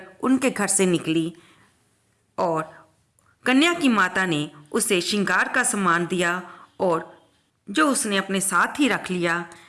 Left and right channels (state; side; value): identical; both; correlation 1.00